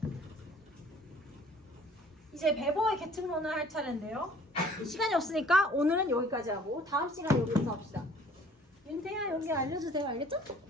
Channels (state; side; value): normal; both; correlation 0.54